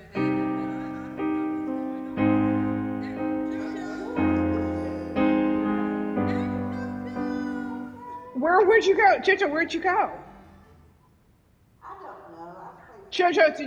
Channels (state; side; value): identical; both; correlation 1.00